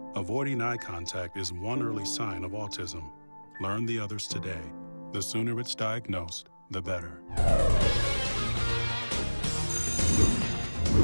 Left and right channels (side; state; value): both; inverted; correlation -1.00